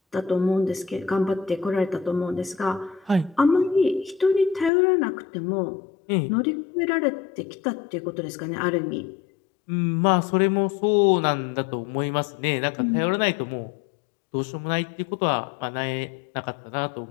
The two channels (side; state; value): right; drops out; at 4.7 s